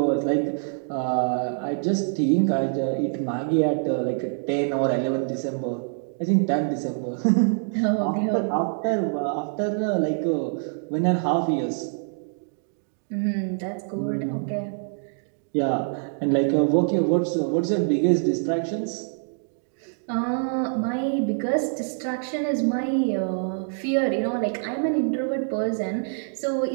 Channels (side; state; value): left; silent; digital silence